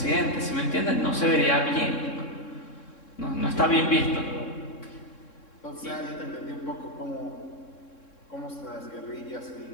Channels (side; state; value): right; late; 3.7 ms